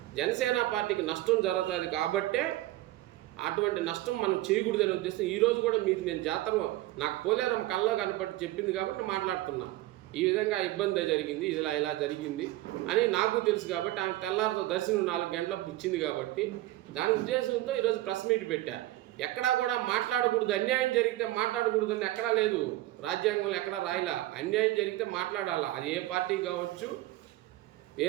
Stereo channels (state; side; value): quieter; left; 16.6 dB